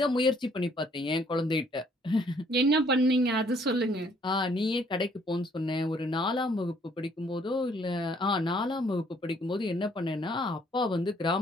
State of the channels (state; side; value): normal; both; correlation 0.63